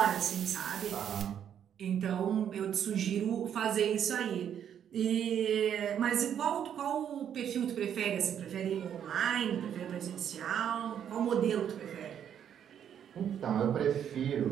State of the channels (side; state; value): left; quieter; 9.1 dB